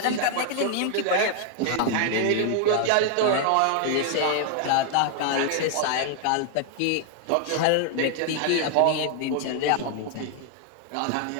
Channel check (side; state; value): both; different; correlation 0.00